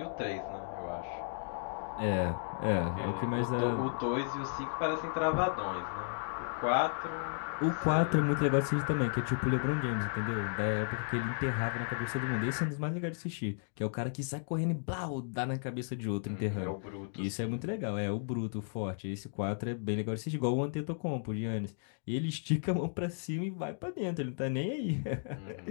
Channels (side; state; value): right; silent; digital silence